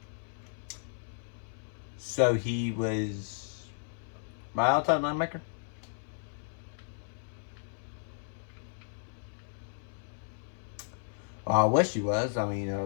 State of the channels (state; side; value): silent; right; 55 dB below the other